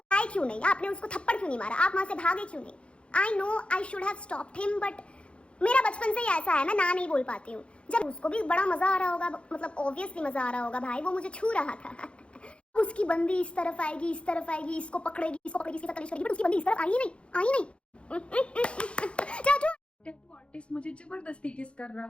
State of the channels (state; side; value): late; right; 0.059 ms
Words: आए क्यों नहीं, आपने उसको थप्पड़ क्यों नहीं मारा, आप वहां से भागे क्यों नहीं? I know I should have stopped him, but मेरा बचपन से ही ऐसा है, मैं ना नहीं बोल पाती हूँ। जब उसको भी बड़ा मजा आ रहा होगा, मतलब ऑब्वियसली मजा आ रहा होगा भाई, वो मुझे छू रहा था। उसकी बंदी इस तरफ आएगी, इस तरफ आएगी, इसको पकड़ेगी, इसको पकड़ेगी, इसके साथ कलेश करेगी, बट उसकी बंदी इस तरफ आई नहीं, आई नहीं। चाचू टैटू आर्टिस्ट मुझे जबरदस्ती किस कर